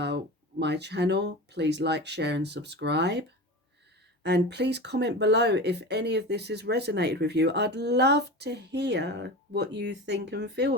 my channel, please like, share and subscribe. And please comment below if any of this has resonated with you. I'd love to hear what you think and feel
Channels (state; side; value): normal; both; correlation 0.29